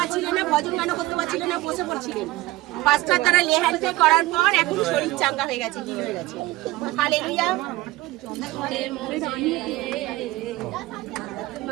না, ভজন গান করতে পারছিলেন না, বসে পড়ছিলেন। পাঁচটা তারা লেহানকে করার পর এখন শরীর চাঙ্গা হয়ে গেছে, কি হয়ে গেছে। হালেলুয়া।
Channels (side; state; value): left; quieter; 18.6 dB